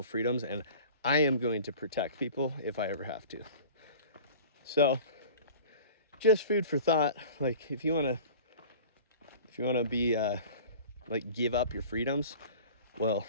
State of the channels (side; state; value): both; inverted; correlation -0.41